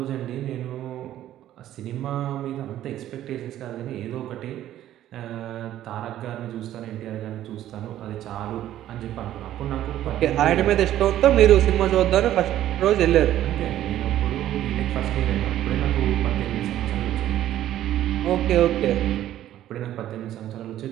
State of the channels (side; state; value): left; quieter; 12.6 dB